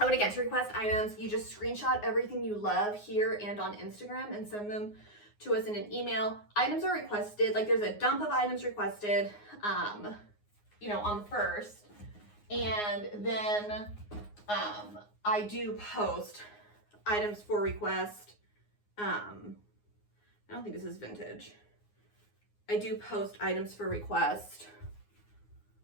and again, to request items, you just screenshot everything you love here and on Instagram and send them to us in an email. Items are requested, like there's a dump of items requested, you know, on the 1st. And then I do post items for request. I don't think this is vintage. I do post items for request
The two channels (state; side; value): late; right; 9.6 ms